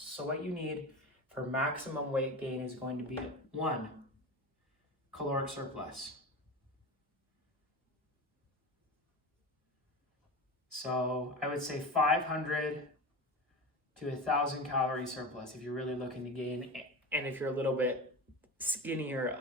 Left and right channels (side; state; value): both; normal; correlation 0.27